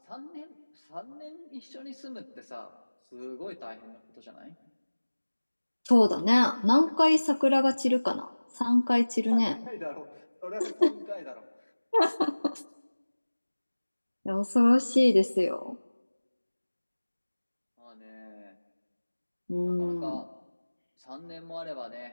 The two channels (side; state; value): both; inverted; correlation -1.00